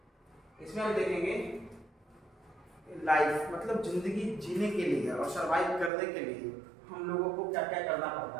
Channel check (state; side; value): drops out; left; at 5.9 s